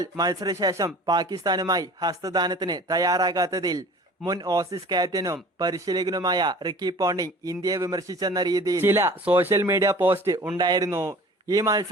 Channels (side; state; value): both; normal; correlation 0.44